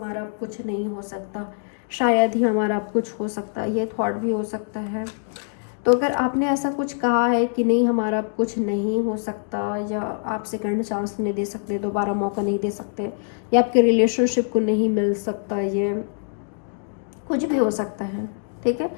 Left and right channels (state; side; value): silent; right; digital silence